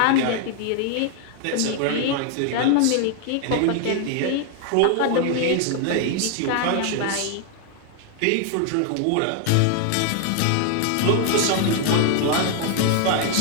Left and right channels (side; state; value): both; different; correlation 0.00